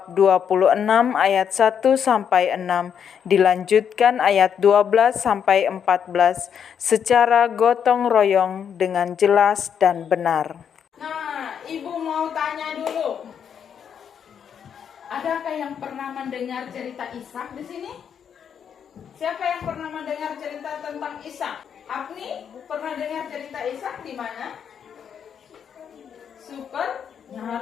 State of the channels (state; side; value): quieter; right; 7.9 dB